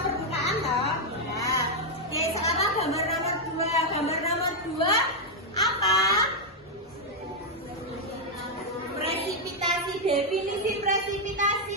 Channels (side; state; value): both; normal; correlation -0.01